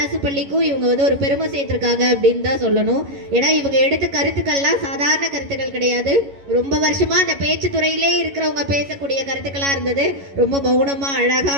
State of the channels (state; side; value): late; left; 11 ms